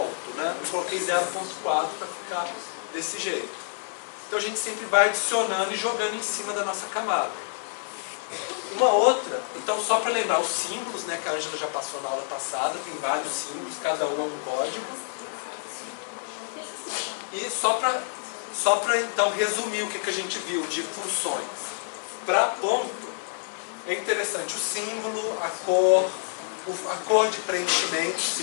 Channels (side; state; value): right; silent; 55 dB below the other